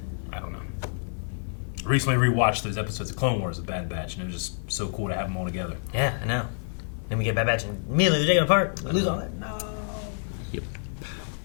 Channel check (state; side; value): silent; right; 58 dB below the other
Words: I don't know. I recently rewatched those episodes of Clone Wars, The Bad Batch, and it was just so cool to have them all together. Yeah, I know. Then we get Bad Batch and immediately they're taken apart. We lose all that. No. Yep.